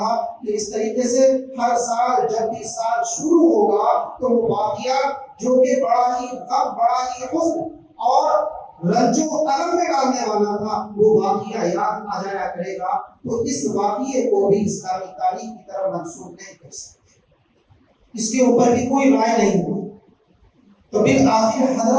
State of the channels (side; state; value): both; identical; correlation 1.00